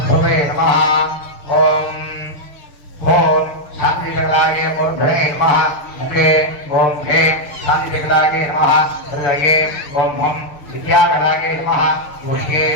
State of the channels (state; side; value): late; right; 6.7 ms